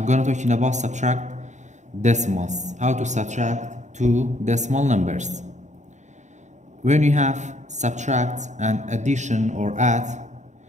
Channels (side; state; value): left; late; 0.34 ms